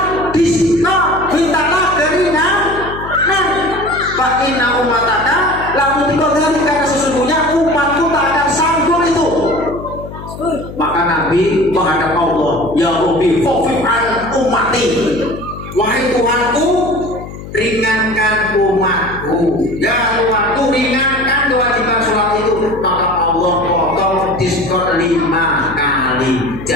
disiksa, mintalah keringanan. Fa inna umataka lamu dikodari, karena sesungguhnya umatku tak akan sanggup itu. Maka Nabi menghadap Allah, ya Rabbi khafif an ummati, wahai Tuhanku, ringankan umatku. Ya Tuhanku, ringankan kewajiban sholat itu. Maka Allah potong diskon kali.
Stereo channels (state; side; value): noise; left; hum, 12 dB below the sound